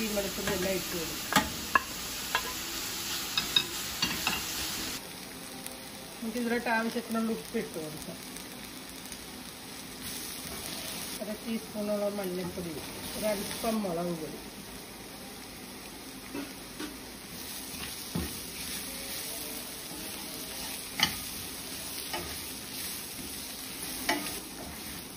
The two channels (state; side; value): identical; both; correlation 1.00